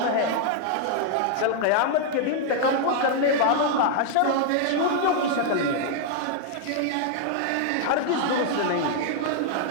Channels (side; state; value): both; different; correlation 0.00